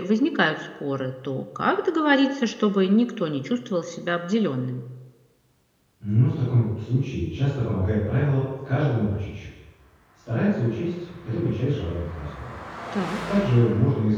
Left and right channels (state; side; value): identical; both; correlation 1.00